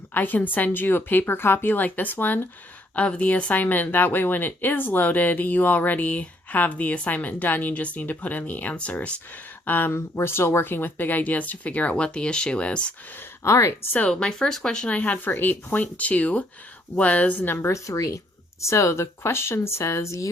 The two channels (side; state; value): both; normal; correlation 0.68